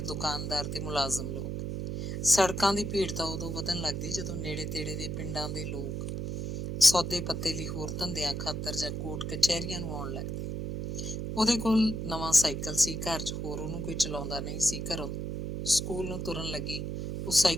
ਦੁਕਾਨਦਾਰ ਤੇ ਮੁਲਾਜ਼ਮ ਲੋਕ। ਸੜਕਾਂ ਦੀ ਭੀੜ ਤਾਂ ਉਦੋਂ ਵਧਣ ਲੱਗਦੀ ਜਦੋਂ ਨੇੜੇ ਤੇੜੇ ਦੇ ਪਿੰਡਾਂ ਦੇ ਲੋਕ ਸੌਦੇ ਪੱਤੇ ਲਈ ਹੋਰ ਧੰਦਿਆਂ ਖਾਤਰ ਜਾਂ ਕੋਰਟ ਕਚਹਿਰੀਆਂ ਨੂੰ ਆਉਣ ਲੱਗਦੇ। ਉਹਦੇ ਕੋਲ ਨਵਾਂ ਸਾਈਕਲ ਸੀ, ਘਰ 'ਚ ਹੋਰ ਉਹਨੂੰ ਕੋਈ ਚਲਾਉਂਦਾ ਨਹੀਂ ਸੀ। ਘਰੋਂ ਸਕੂਲ ਨੂੰ ਤੁਰਨ ਲੱਗੀ ਉਹ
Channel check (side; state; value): right; noise; hum, 3 dB below the sound